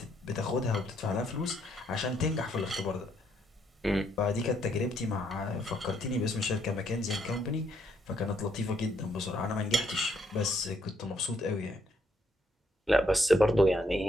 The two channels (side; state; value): both; normal; correlation 0.73